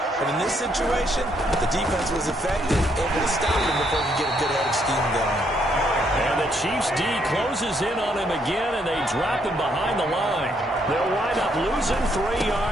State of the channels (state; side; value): normal; both; correlation 0.72